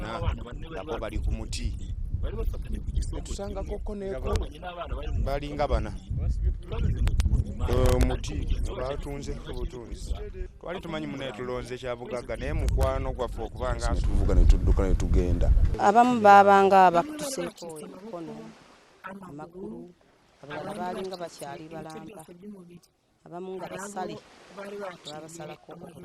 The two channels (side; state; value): both; identical; correlation 1.00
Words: abana bane bari batunzwe ku giti bari bafatanye ku gisongo kimwe. Twabonye n'abana bari mu mufuka munini, twagize ngo tubonye imari, ariko mugenzi wacu agifungura imashini gutya havamo umurambo, twese tuyitaho turiruka turagenda. Bamwe bari bacitse amaboko, amaguru, abandi bacitse ibice byose by'umubiri, hari abo bari baciye